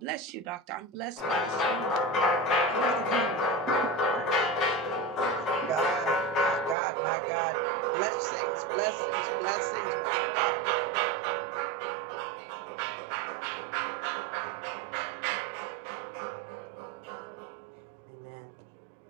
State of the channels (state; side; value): drops out; left; at 6.8 s